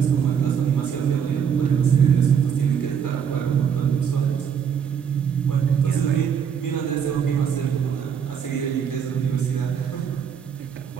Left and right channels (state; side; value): quieter; left; 7.6 dB